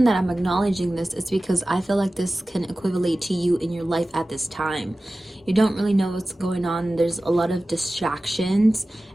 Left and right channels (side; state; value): both; normal; correlation 0.96